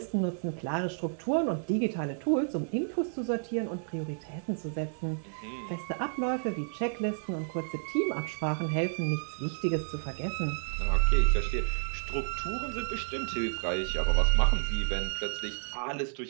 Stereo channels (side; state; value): left; silent; 57 dB below the other